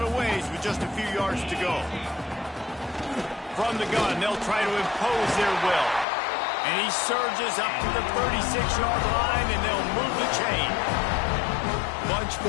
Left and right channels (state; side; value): drops out; right; at 6.1 s